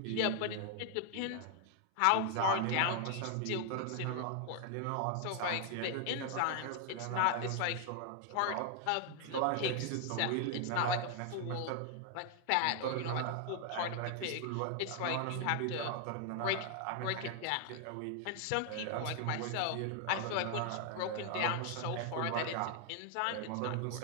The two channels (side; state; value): both; different; correlation 0.00